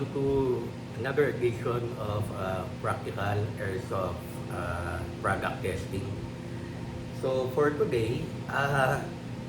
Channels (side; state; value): both; identical; correlation 1.00